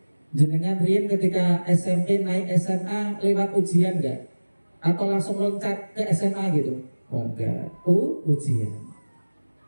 Jenengan riyen ketika SMP naik SMA lewat ujian enggak? Atau langsung loncat ke SMA gitu? Oh enggak. Ujian.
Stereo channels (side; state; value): both; inverted; correlation -1.00